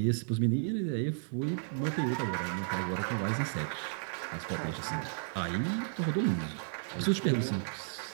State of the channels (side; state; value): left; silent; 56 dB below the other